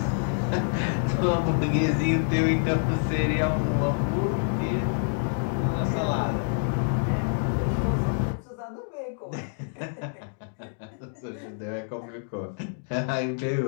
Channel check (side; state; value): right; silent; digital silence